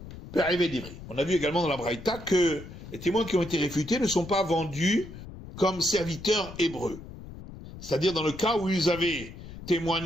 perivé d'ivri. On a vu également dans la Braïta que les témoins qui ont été réfutés ne sont pas vendus comme serviteurs hébreux. C'est-à-dire dans le cas où ils avaient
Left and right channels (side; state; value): left; noise; rumble, 14 dB below the sound